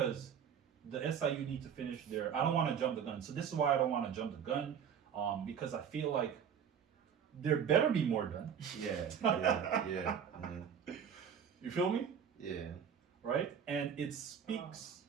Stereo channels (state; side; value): quieter; left; 7.9 dB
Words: the SIU need to finish their. I don't want to jump the gun. So this is why I don't want to jump the gun, because I feel like there better be more done. Yeah. You feel me? Yeah. Right? And it speaks